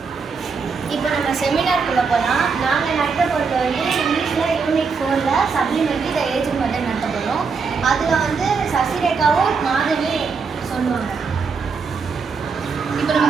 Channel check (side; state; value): left; quieter; 5.2 dB